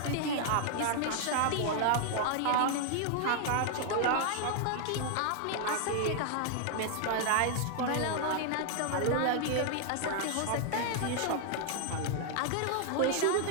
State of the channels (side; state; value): both; different; correlation 0.00